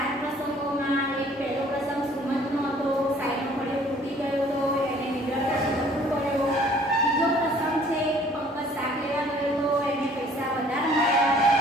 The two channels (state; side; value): normal; both; correlation 0.55